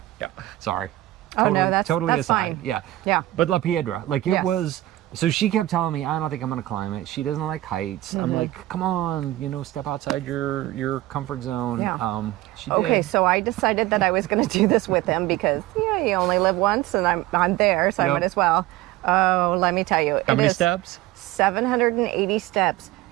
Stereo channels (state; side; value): quieter; left; 16.5 dB